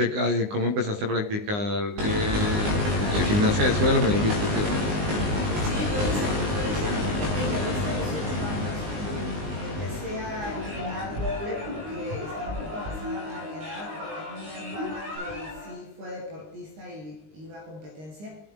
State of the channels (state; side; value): late; left; 19 ms